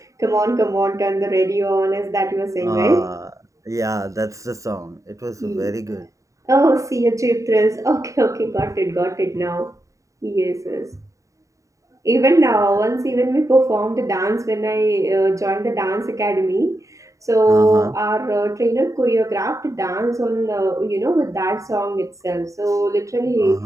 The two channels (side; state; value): left; late; 0.16 ms